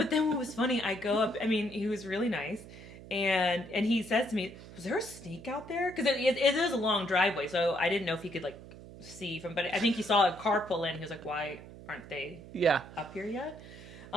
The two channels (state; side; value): noise; right; hum, 16 dB below the sound